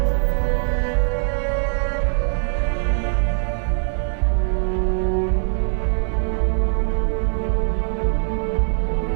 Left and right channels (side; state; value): left; silent; digital silence